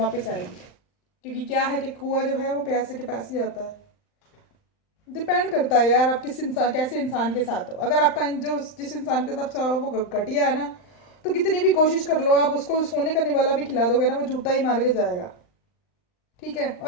आएगी, क्योंकि क्या है कि कुआं जो है वो पैसे के पास ही आता है। डिपेंड करता है यार आप किस इंसान, कैसे इंसान के साथ हो। अगर आपका जो जिस इंसान के साथ वो घटिया है ना, तो कितनी भी कोशिश कर लो आप, उसको सोने का निवाला भी खिला दोगे ना, वो जूता ही मार के जाएगा। ठीक है,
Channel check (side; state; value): right; late; 39 ms